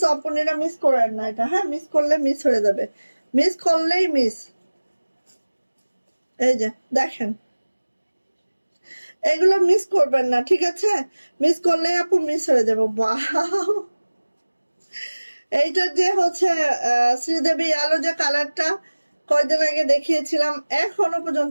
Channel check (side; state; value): both; inverted; correlation -1.00